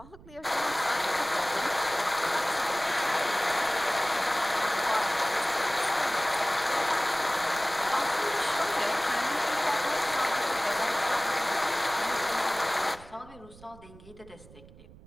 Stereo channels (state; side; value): noise; right; rumble, 21 dB below the sound